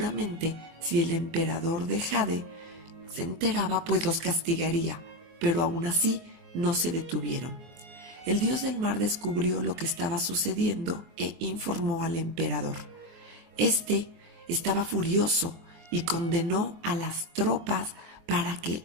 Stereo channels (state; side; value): late; left; 24 ms